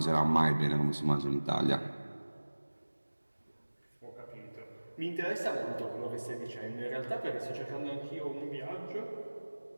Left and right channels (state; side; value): inverted; both; correlation -1.00